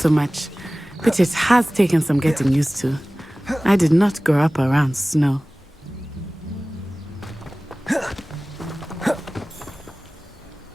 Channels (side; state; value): both; normal; correlation 0.98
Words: much, but it has taken some getting used to. I did not grow up around snow.